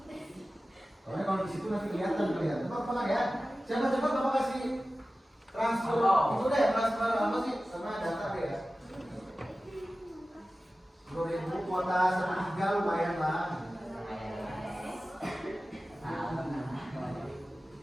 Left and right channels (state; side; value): normal; both; correlation 0.95